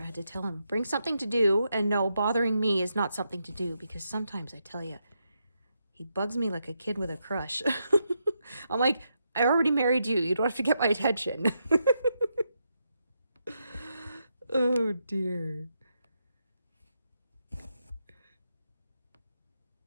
had to tell him, bring something to do, and no, bothering me is not something to do, because sometimes I tell you, he bugs me like a kid with a crush. I'm like, I already married you. You don't have to get my attention. Oh, dear.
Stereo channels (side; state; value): both; inverted; correlation -0.82